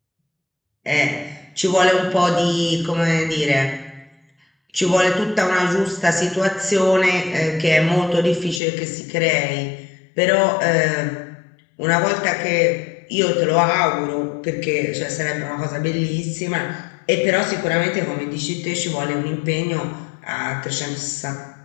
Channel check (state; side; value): drops out; right; at 8.6 s